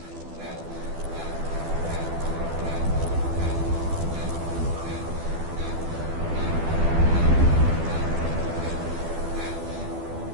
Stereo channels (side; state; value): left; late; 12 ms